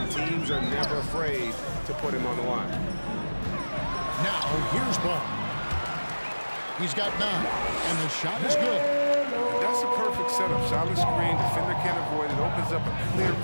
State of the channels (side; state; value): both; inverted; correlation -1.00